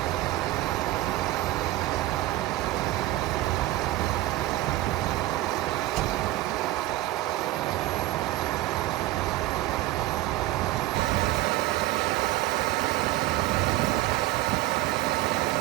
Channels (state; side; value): quieter; left; 16.5 dB